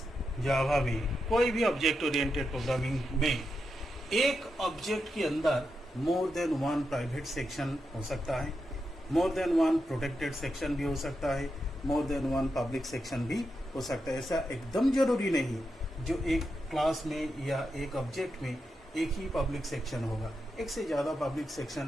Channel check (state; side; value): normal; both; correlation 0.86